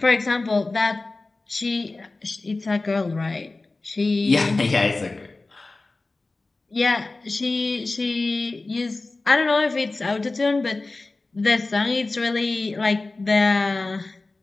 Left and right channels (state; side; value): quieter; right; 3.3 dB